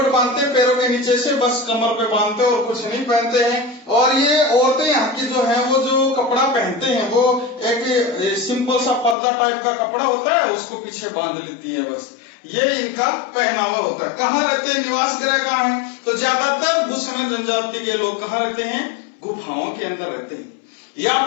बांधते हैं पैरों के नीचे से, बस कमर पे बांधते हैं और कुछ नहीं पहनते हैं। और ये औरतें यहाँ की जो है वो जो कपड़ा पहनते हैं वो एक सिंपल सा पर्दा टाइप का कपड़ा होता है, उसको पीछे बांध लेती है, बस ये इनका पहनावा होता है। कहाँ रहते हैं, निवास गृह कहाँ है, तो ज्यादातर बुशमैन जनजाति के लोग कहाँ रहते हैं, गुफाओं के अंदर रहते हैं, या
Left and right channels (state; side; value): drops out; right; at 9.2 s